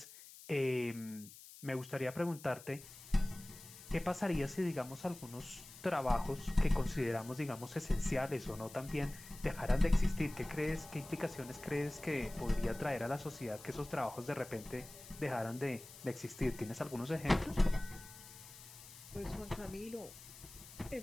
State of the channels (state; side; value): noise; left; hiss, 17 dB below the sound